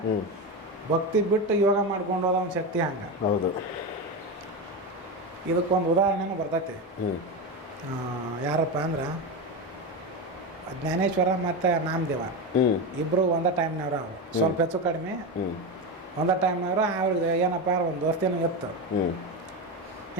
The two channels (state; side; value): normal; both; correlation 0.17